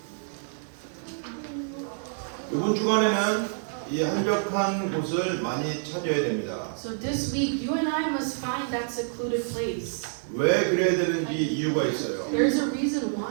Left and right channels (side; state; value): left; silent; 60 dB below the other